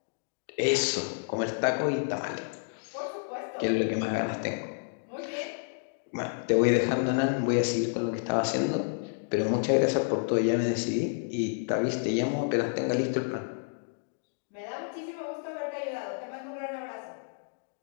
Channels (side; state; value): right; silent; digital silence